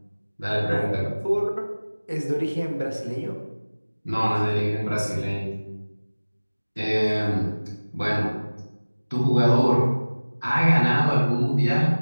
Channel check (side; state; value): both; inverted; correlation -1.00